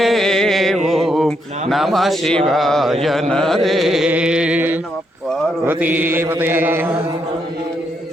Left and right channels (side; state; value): both; normal; correlation 0.78